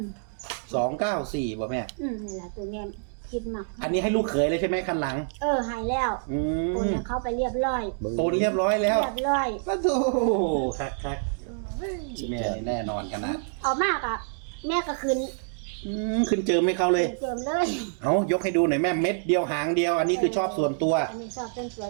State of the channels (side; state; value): left; silent; digital silence